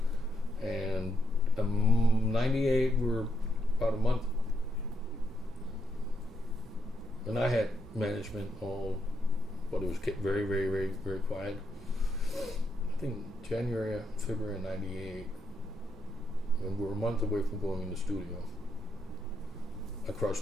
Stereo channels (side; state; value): both; normal; correlation 0.79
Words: And 98, we were about a month. And I had management but it was kept very, very, very, very quiet. I think January, February of 98, when we were a month away from going in the studio, I